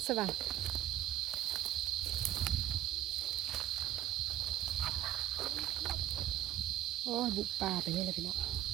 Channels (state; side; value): quieter; left; 12.7 dB